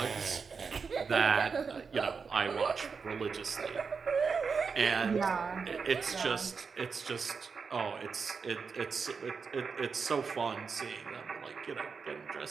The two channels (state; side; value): quieter; left; 5.4 dB